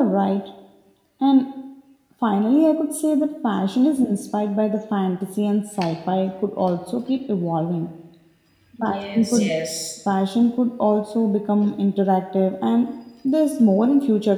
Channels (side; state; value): both; identical; correlation 1.00